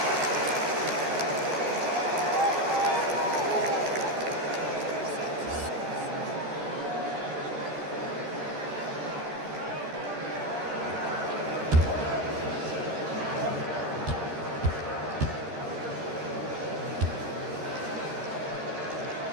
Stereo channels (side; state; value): left; late; 13 ms